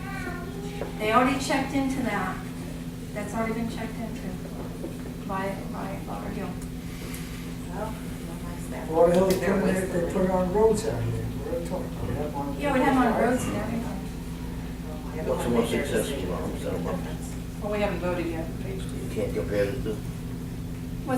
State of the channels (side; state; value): both; identical; correlation 1.00